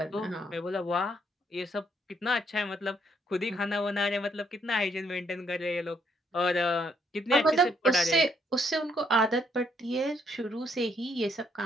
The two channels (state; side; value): normal; both; correlation 0.71